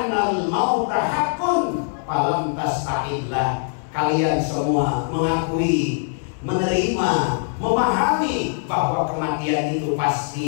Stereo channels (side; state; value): right; silent; 64 dB below the other